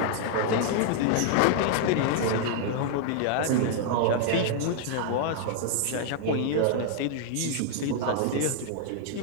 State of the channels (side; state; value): both; different; correlation 0.00